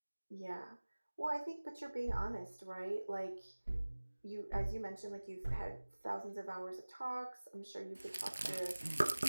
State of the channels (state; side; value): inverted; both; correlation -1.00